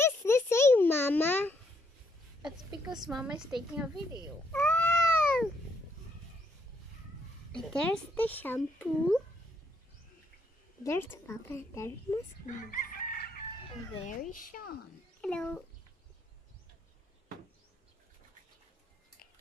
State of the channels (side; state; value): both; normal; correlation 0.73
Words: the same, Mama? That's because Mama is taking a video. Oh! There's the shampoo. There's Papa. There's Maximus. And there is Sean. Hello.